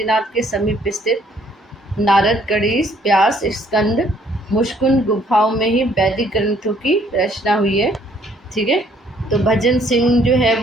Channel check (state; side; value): normal; both; correlation 0.63